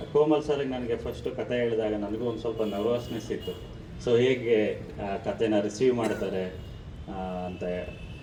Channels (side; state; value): both; identical; correlation 1.00